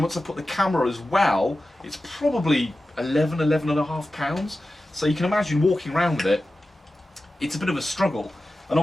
I put the camera as well, it's probably 11 and a half pounds. So you can imagine walking around with it, it's a bit of a struggle. And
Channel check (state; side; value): normal; both; correlation 0.94